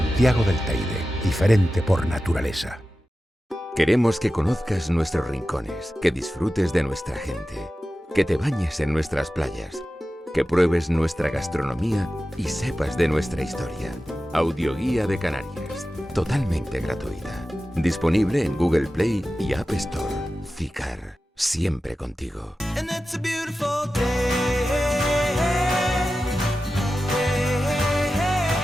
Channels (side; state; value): both; normal; correlation 0.94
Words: del Teide, diferente por naturaleza. Queremos que conozcas nuestros rincones, que disfrutes de nuestra gente, que te bañes en nuestras playas, que pruebes nuestra gastronomía y sepas de nuestra historia. Audioguía de Canarias, totalmente gratuita. Disponible en Google Play y App Store. SICAR, siempre contigo. And it's a beautiful day.